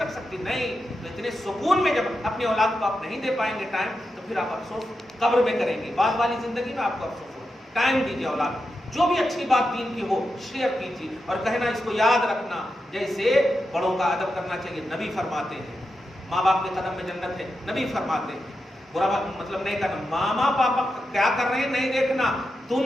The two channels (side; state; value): both; normal; correlation 0.88